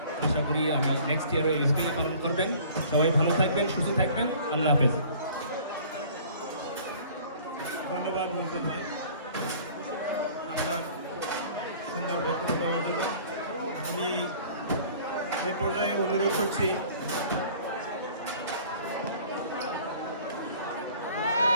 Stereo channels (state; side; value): inverted; both; correlation -0.50